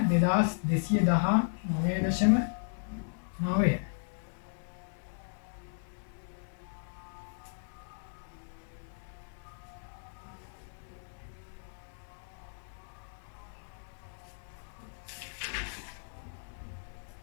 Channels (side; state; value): right; silent; digital silence